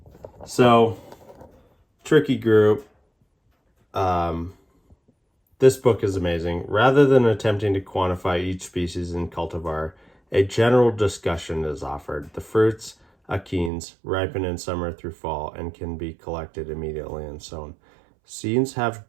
So, tricky group. This book is amazing. Rather than attempting to quantify each species in cultivar, a general discussion is offered. The fruits, achenes, ripen in summer through fall and can be collected immediately and sown. Seeds have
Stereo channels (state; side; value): drops out; left; at 13.7 s